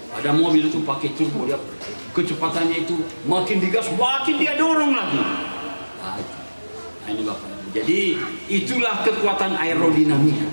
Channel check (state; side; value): inverted; both; correlation -1.00